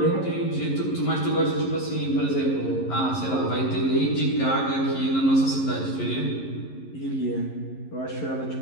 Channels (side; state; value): right; late; 11 ms